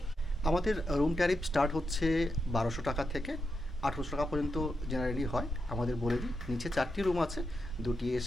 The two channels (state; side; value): normal; both; correlation 0.86